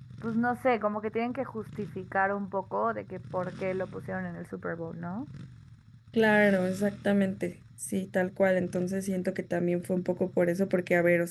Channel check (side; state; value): both; identical; correlation 1.00